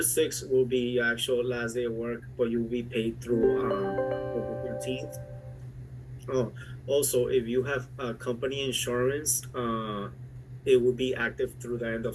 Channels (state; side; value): identical; both; correlation 1.00